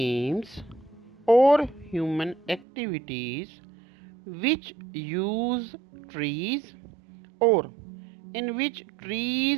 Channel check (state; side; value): drops out; left; at 2.7 s